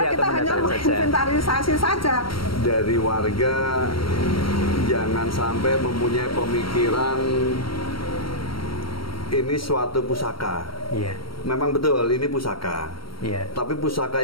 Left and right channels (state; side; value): late; right; 0.74 ms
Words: hanya menginventarisasi saja. Dari warga jangan sampai mempunyai pemikiran ini suatu pusaka. Memang betul ini pusaka. Tapi pusaka